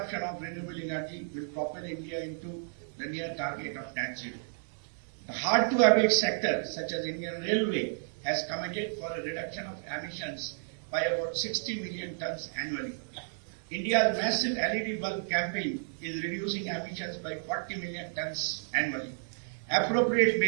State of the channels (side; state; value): left; silent; digital silence